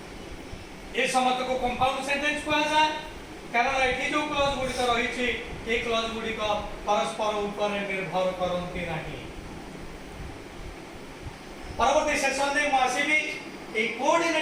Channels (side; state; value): both; identical; correlation 1.00